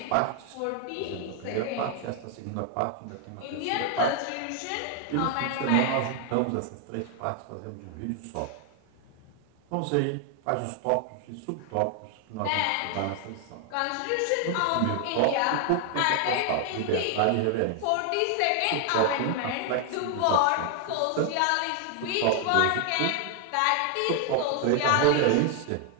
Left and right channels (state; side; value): different; both; correlation 0.00